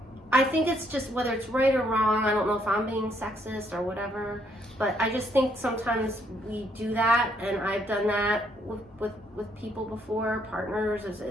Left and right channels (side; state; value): both; normal; correlation 0.70